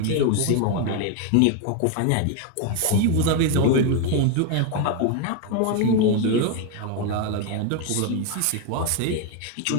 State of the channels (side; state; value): both; different; correlation 0.01